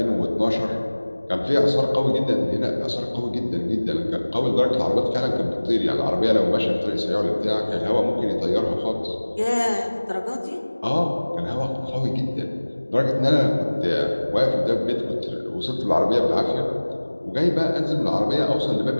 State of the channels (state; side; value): inverted; both; correlation -1.00